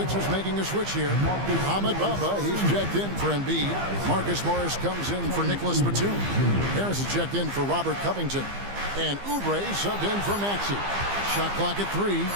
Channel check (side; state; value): left; late; 15 ms